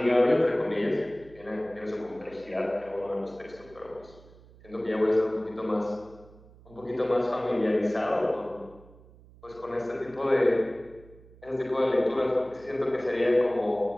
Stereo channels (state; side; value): noise; right; hum, 23 dB below the sound